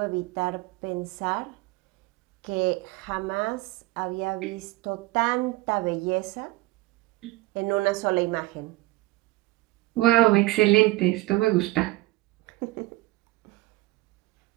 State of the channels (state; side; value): quieter; left; 19.9 dB